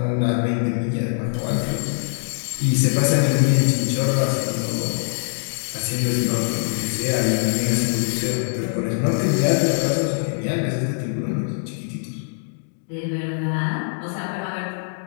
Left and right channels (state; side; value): silent; right; digital silence